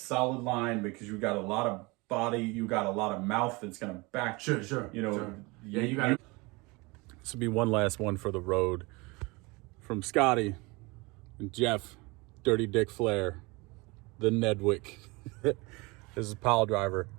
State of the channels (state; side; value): quieter; left; 25.5 dB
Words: line because you got a lot of body, you got a lot of mouth that's gonna back. Sure. You know. Sure. Yeah, you got. This will be one last one for the road. From Scotty and Jeff, Dirty Dick Flair, the Nedwick. This is PileDriver.